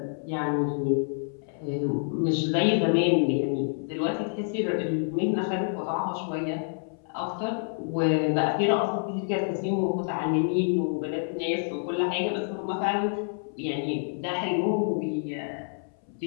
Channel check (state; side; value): silent; right; 60 dB below the other